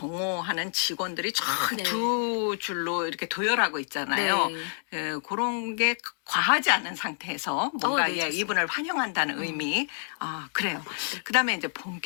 직원들이 쫙 네. 두 줄로 이렇게 도열하고 있잖아요. 네. 그런 게 과하지 않은 상태에서 뭔가 네, 좋습니다. 이분을 환영한다는 의미. 아, 그래요. 그다음에 이제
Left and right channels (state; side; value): silent; right; 59 dB below the other